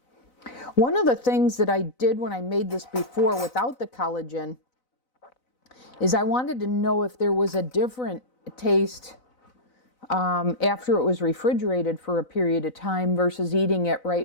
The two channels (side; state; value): right; late; 4.0 ms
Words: One of the things that I did when I made this before without the collagen is I wanted to know if there was a different taste after it was refrigerated for a period of time versus eating it